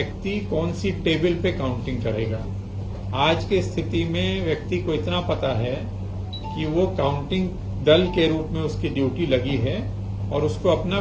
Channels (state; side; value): identical; both; correlation 1.00